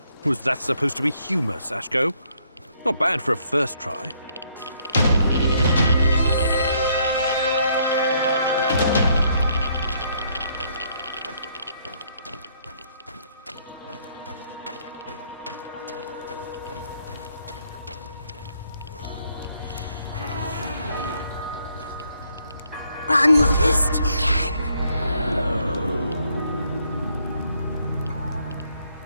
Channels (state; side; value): inverted; both; correlation -0.70